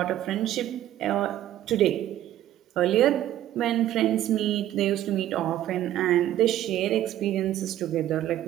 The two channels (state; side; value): quieter; left; 12.8 dB